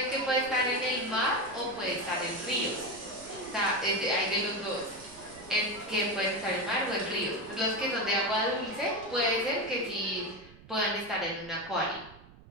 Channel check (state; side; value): noise; right; rumble, 21 dB below the sound